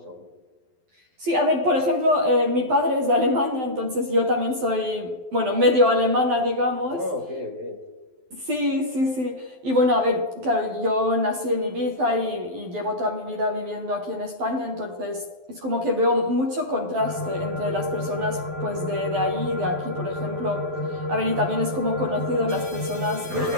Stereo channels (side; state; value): left; late; 12 ms